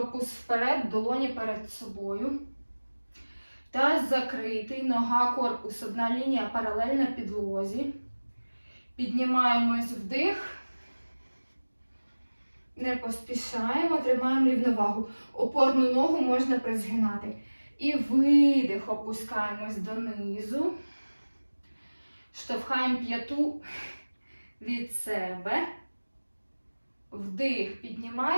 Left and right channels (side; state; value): both; inverted; correlation -1.00